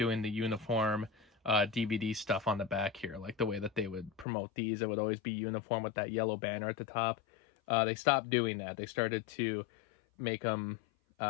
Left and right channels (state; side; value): drops out; right; at 4.2 s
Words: the uniform DVD stuff on the back here, like the way that they would promote these. It would always be uniform with that yellow banner at the top. They stopped doing that. They started to make them